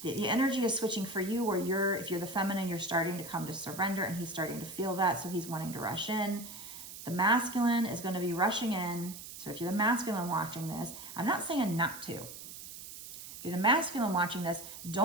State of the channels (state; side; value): noise; right; hiss, 12 dB below the sound